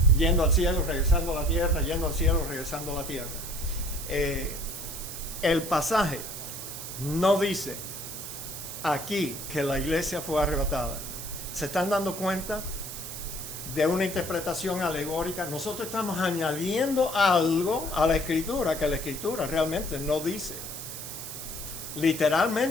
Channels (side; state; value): right; noise; hiss, 8 dB below the sound